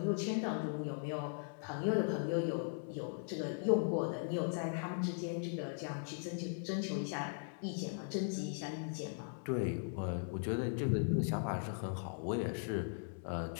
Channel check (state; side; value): silent; right; 52 dB below the other